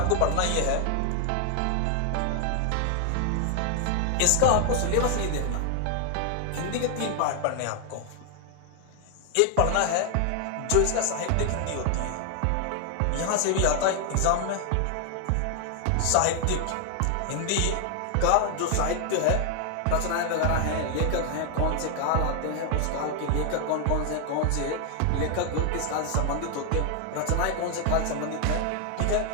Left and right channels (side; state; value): both; different; correlation 0.00